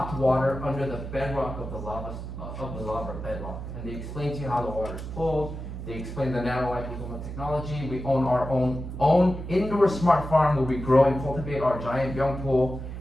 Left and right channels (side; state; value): right; noise; hum, 8 dB below the sound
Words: water under the bedrock of the lava bedrock. And they explain to you how the water is pulled. They explain the nanoliposomal technology. We own our own indoor smart farm where we grow and cultivate our giant byungpool.